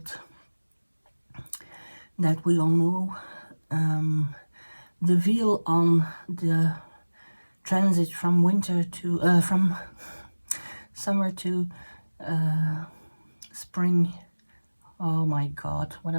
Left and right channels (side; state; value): both; inverted; correlation -1.00